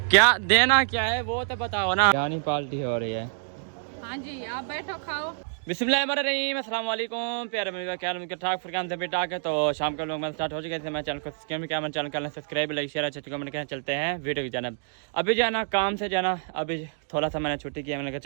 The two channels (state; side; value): silent; left; digital silence